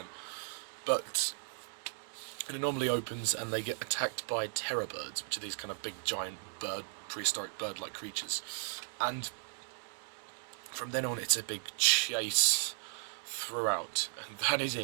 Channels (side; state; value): left; silent; 54 dB below the other